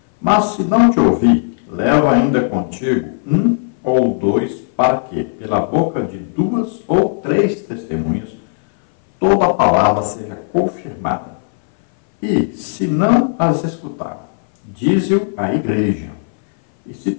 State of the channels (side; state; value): right; silent; 60 dB below the other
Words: Mas se não te ouvir, leva ainda contigo um ou dois, para que, pela boca de 2 ou 3 testemunhas, toda a palavra seja confirmada. E, se não as escutar, dize-o à igreja. E se